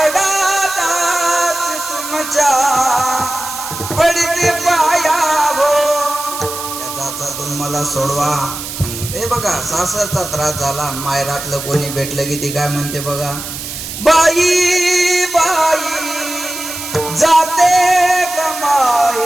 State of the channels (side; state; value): right; noise; hiss, 8 dB below the sound